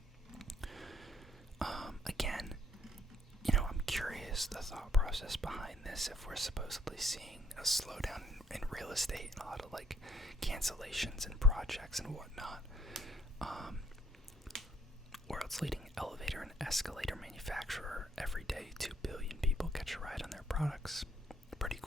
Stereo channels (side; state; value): both; normal; correlation 0.64